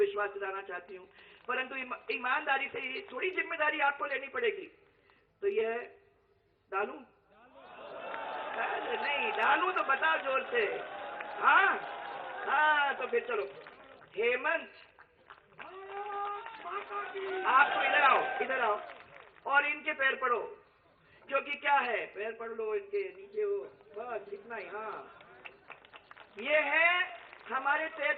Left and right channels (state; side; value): identical; both; correlation 1.00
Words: दिलाना चाहती हूं। परंतु ईमानदारी से ये थोड़ी जिम्मेदारी आपको लेनी पड़ेगी। तो यह डालूं? नहीं डालूं तो बताओ जोर से। हाँ हाँ, तो फिर चलो। हेमंत, आपको इधर आओ, इधर आओ और इनके पैर पड़ो, क्योंकि क्या है, पैर पड़ लो इनके नीचे हो, बस इतना ही। हाँ, ये है हमारे